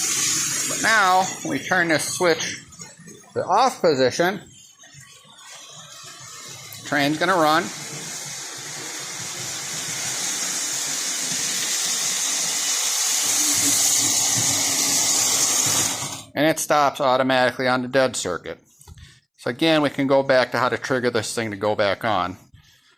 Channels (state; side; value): identical; both; correlation 1.00